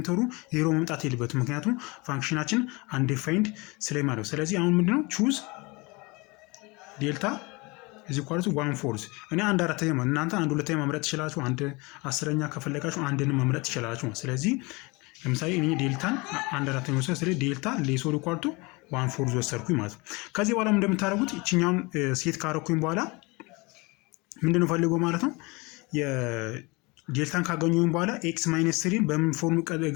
ዜሮ መምጣት የለበትም ምክንያቱም ፋንክሽናችን አንዲፋይንድ ስለማለት። ስለዚህ አሁን ምንድነው ቹዝ ዴልታ እዚህ ኳልቱ 1/4 እኔ 1/4 ማለት እናንተ 1/2 መምረጥ ትችላላችሁ። 1/10 ከፈለጋችሁ አንድንም መምረጥ ትችላላችሁ። ስለዚህ ለምሳሌ እኔ ዴልታን 1/4 ወሰድኩ። ስለዚህ ዴልታ ሌሶር ኳልቱ 1/4 ወሰድኩኝ ማለት ነው። ከዚህ በኋላ እንደምታደርጉት እቺኛውን ሴት ካረኩኝ በኋላ ምንድነው ፈልገው ማለት ነው የዴልታን ካገኘሁኝ በኋላ x ማይነስ 3 በምን ፎርም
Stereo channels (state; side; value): quieter; right; 26.1 dB